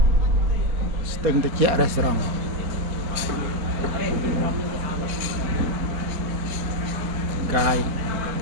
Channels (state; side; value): late; left; 4.2 ms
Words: ស្ទឹងត្រជាក់រេស្តូរ៉ង់ កាយ